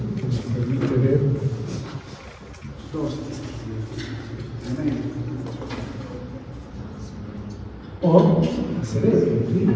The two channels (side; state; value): both; identical; correlation 1.00